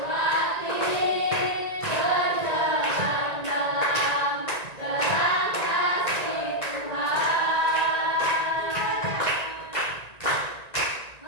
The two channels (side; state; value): right; late; 1.9 ms